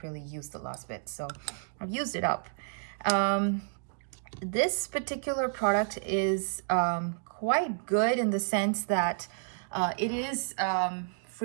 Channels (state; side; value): silent; left; 57 dB below the other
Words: really use the last bit, so I've used it up. This particular product is quite good in the sense that it is